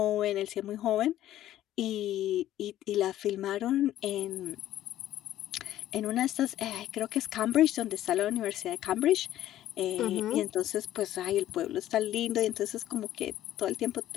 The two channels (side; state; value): right; quieter; 13.1 dB